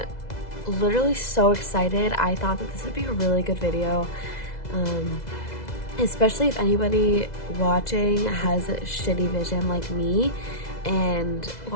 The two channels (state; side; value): late; right; 2.0 ms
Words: literally so excited. I thought that this would be a really good video, especially if anybody watching has a shitty vision like me and